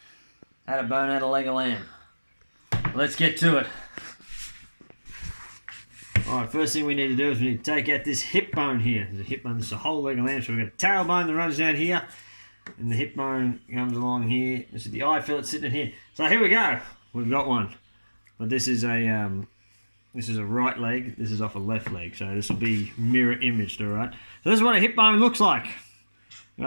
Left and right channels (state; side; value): inverted; both; correlation -1.00